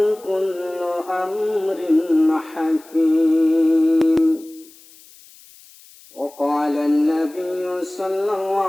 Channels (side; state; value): left; noise; hiss, 24 dB below the sound